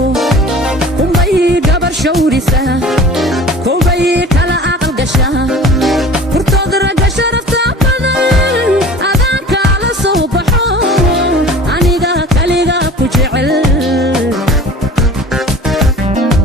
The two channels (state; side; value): normal; both; correlation 0.43